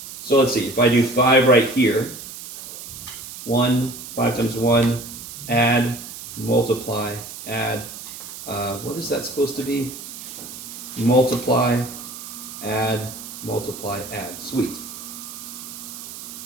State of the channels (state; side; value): noise; right; hiss, 12 dB below the sound